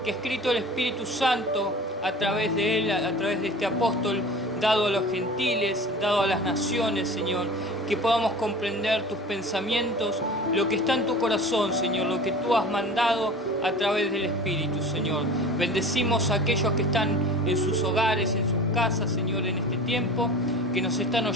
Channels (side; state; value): both; normal; correlation 0.39